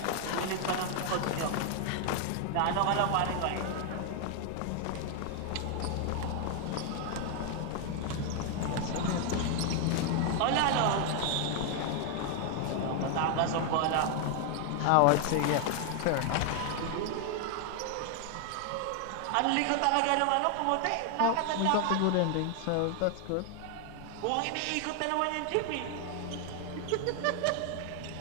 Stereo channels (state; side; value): different; both; correlation 0.00